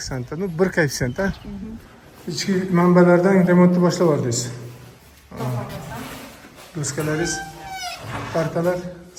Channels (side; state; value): both; identical; correlation 1.00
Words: ta. Bir koeffitsient, ha? Ichki manbalardan remontni boshlab yubordingiz. Doskalaringiz, partalar,